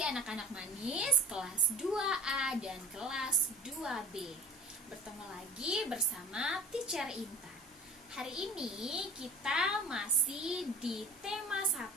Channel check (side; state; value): both; normal; correlation 0.42